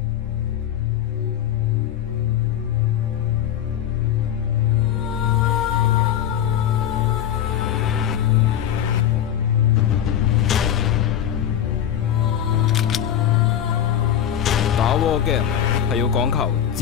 打 war game 係要講求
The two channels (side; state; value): right; quieter; 10.2 dB